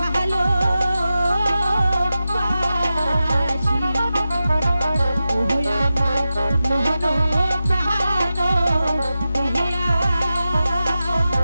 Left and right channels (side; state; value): both; inverted; correlation -0.92